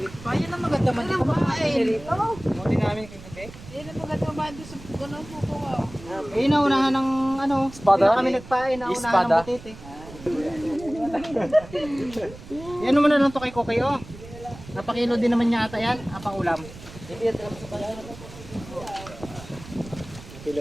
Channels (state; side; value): noise; right; rumble, 16 dB below the sound